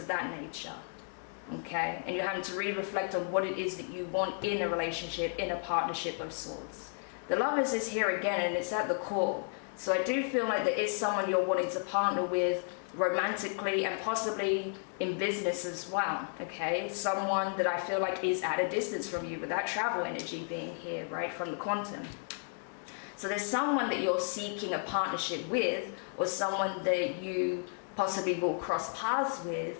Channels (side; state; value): right; silent; 56 dB below the other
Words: that nature, okay? And you're having to really reflect on what it is that you want in a relationship, in a partnership of sorts. The Lovers is here again, and it's at the core. So I do feel like there is someone you're wanting to partner with romantically and possibly in business as well, okay? Someone that I feel like is at a distance from you, with that travel energy being here, right, from the quantum. So there's someone that you're seeking a partnership with, or someone that you possibly will cross paths